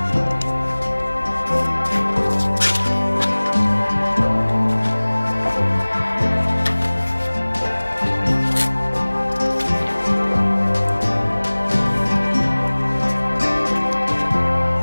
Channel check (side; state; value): both; inverted; correlation -1.00